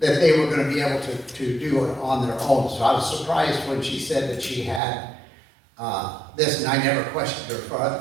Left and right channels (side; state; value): left; drops out; at 4.8 s